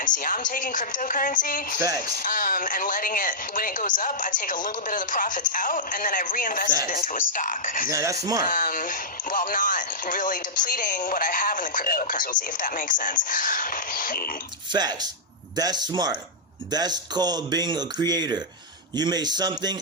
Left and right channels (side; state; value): both; normal; correlation -0.10